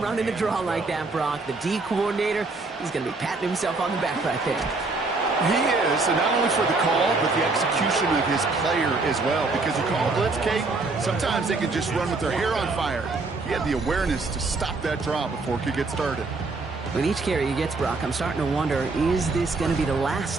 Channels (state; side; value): quieter; left; 3.7 dB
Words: running the draw like that, Brock, the D coordinator, he's going to be patting himself on the back right there. He is, and not only for the call, but the execution of his player as well. Because you call a blitz, Kate, sometimes they can just run with their hair on fire. He had the awareness to stop that draw before it could get started. With each carry he gets, Brock, I'm starting to wonder, is this going to be the